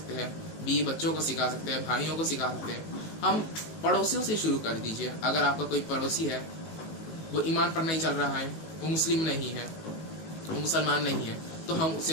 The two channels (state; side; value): late; right; 19 ms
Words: हैं, बीवी बच्चों को सिखा सकते हैं, भाइयों को सिखा सकते हैं। हम पड़ोसियों से शुरू कर दीजिए। अगर आपका कोई पड़ोसी है, वो ईमान पर नहीं चल रहा है, वो मुस्लिम नहीं है, वो मुसलमान नहीं है, तो हम